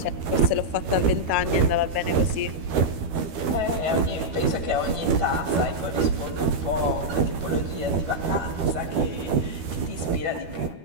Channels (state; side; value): late; left; 12 ms